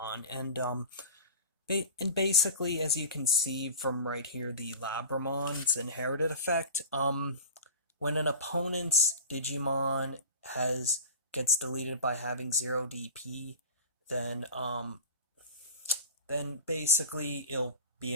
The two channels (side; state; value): both; inverted; correlation -0.34